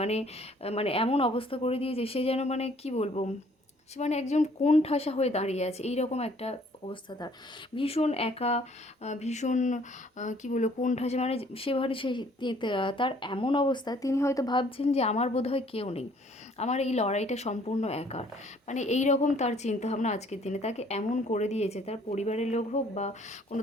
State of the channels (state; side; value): normal; both; correlation 0.60